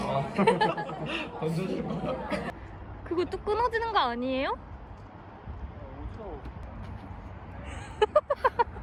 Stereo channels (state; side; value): identical; both; correlation 1.00